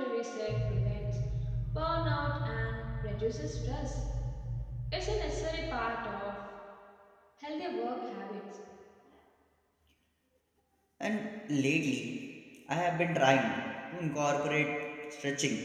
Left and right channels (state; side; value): identical; both; correlation 1.00